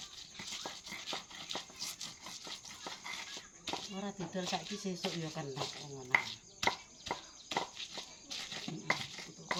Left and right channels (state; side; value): identical; both; correlation 1.00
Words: Ora didol saiki sesuk ya kena ngono.